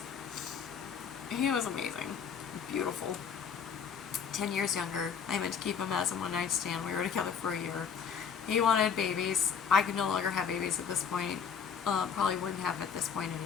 He was amazing. Beautiful. 10 years younger. I meant to keep him as a one-night stand. We were together for a year. He wanted babies. I could no longer have babies at this point. Probably wouldn't have at this point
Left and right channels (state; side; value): quieter; right; 6.9 dB